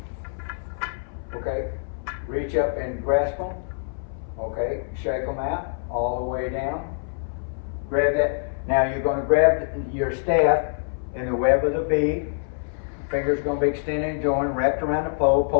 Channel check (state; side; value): silent; right; 62 dB below the other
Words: Okay, reach up and grasp them. Okay, shake them out all the way down. Grab that. Now you're going to grab your staff in the web of the V. Fingers going to be extended and joined, wrapped around the pole.